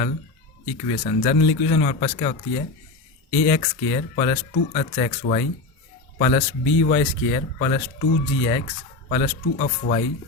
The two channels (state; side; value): quieter; right; 3.2 dB